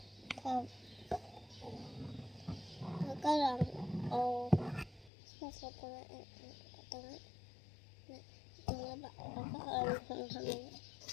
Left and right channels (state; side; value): drops out; right; at 5.1 s